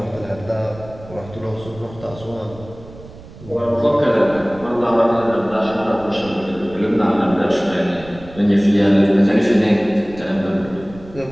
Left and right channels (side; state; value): right; noise; rumble, 18 dB below the sound